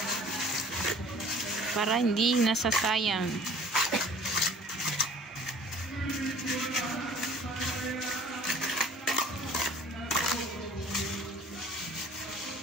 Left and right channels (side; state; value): both; normal; correlation 0.50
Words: Para hindi nasasayang.